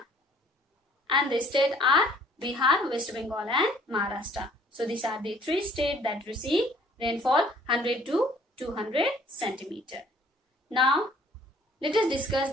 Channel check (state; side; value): normal; both; correlation 0.58